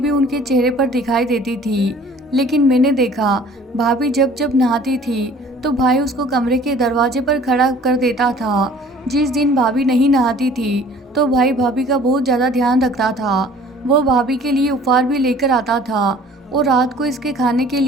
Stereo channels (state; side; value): normal; both; correlation 0.50